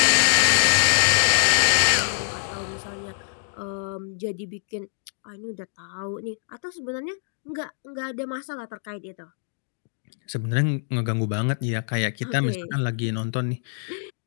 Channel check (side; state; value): right; silent; digital silence